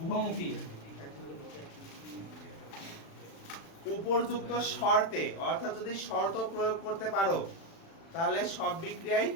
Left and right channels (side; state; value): right; late; 36 ms